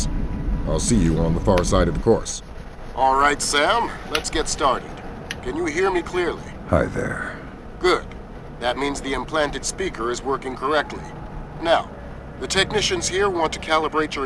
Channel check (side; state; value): both; identical; correlation 1.00